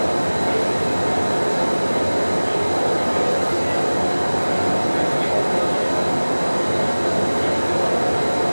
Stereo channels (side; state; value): both; inverted; correlation -1.00